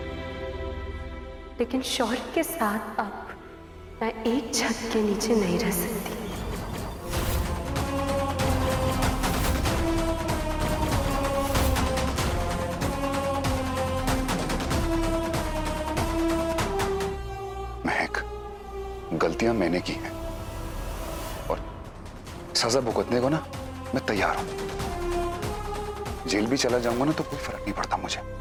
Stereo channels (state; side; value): identical; both; correlation 1.00